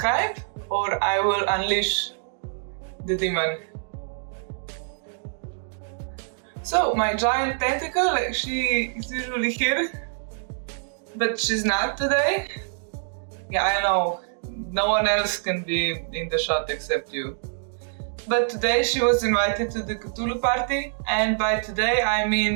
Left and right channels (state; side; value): silent; left; digital silence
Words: or I will unleash the demon. So my giant tentacle, she is usually here, but she's not today. Yeah, I know, no one else can be in the shot except you. But today she was invited to the Cthulhu party, and by today I